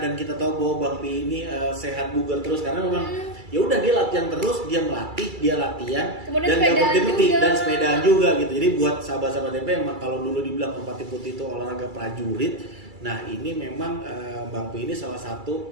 kita tahu bahwa Bang Pi ini sehat bugar terus karena memang ya udah dia latihan terus, dia melatih, dia latihan Kemudian dan nggak sepedaan berhenti juga. dan sepedaan juga gitu. Jadi buat sahabat-sahabat MP emang kalau dulu dibilang Merpati Putih itu olahraga prajurit, nah ini memang Bang Pi ini salah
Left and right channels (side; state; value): left; late; 2.3 ms